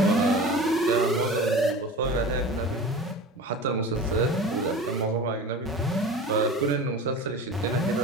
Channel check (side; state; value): both; normal; correlation 0.35